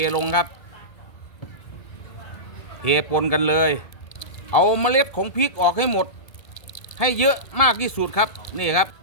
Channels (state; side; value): late; right; 1.7 ms